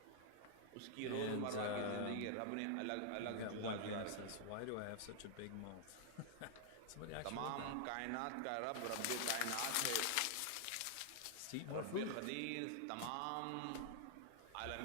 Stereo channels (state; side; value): different; both; correlation 0.00